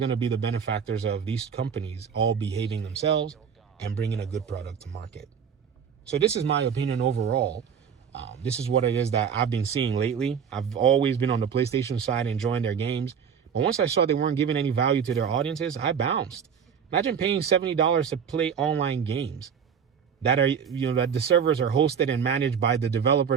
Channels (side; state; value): left; quieter; 7.3 dB